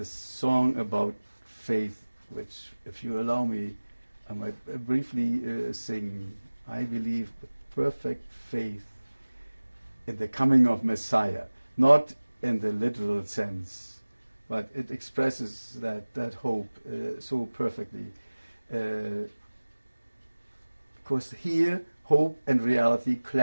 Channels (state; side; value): inverted; both; correlation -1.00